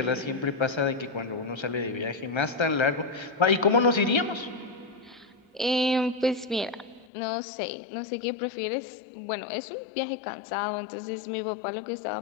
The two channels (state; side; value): drops out; right; at 7.1 s